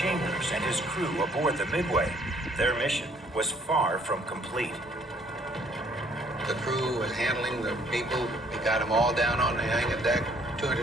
and his crew aboard the Midway, their mission was far from complete. The crew was handling the people. We got them all down on the hangar deck.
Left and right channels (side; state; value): both; normal; correlation 0.62